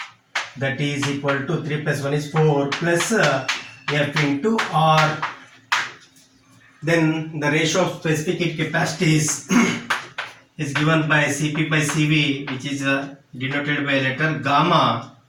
that is equal to 3 plus 1 is 4 plus F into R. Then the ratio of specific heat capacities is given by Cp by Cv, which is denoted by letter gamma,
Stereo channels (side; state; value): both; identical; correlation 1.00